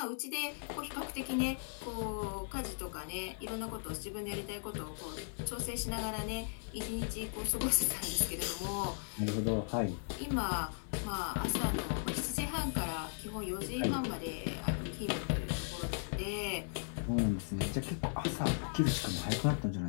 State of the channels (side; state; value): right; silent; 53 dB below the other